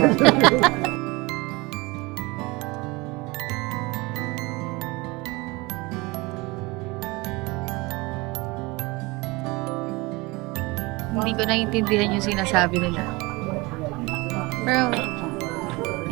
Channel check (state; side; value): quieter; left; 24.1 dB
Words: Hindi ko naiintindihan yung sinasabi nila. Pero,